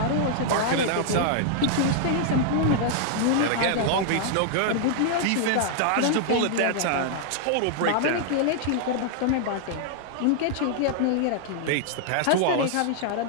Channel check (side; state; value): both; different; correlation -0.01